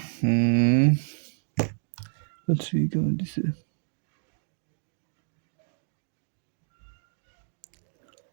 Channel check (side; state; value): left; silent; digital silence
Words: থ্রি কেমন দিছে,